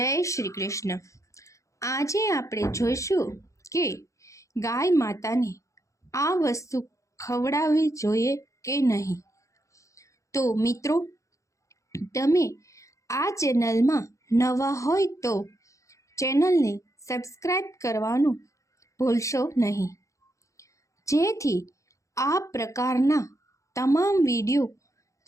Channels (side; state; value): right; late; 0.15 ms